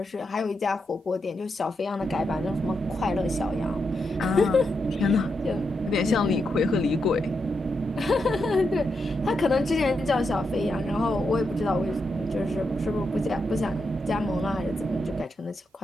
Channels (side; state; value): both; normal; correlation 0.84